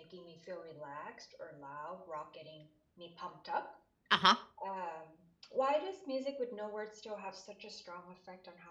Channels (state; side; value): identical; both; correlation 1.00